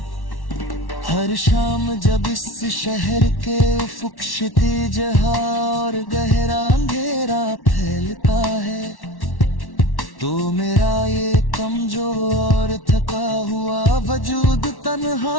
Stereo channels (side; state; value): right; late; 1.1 ms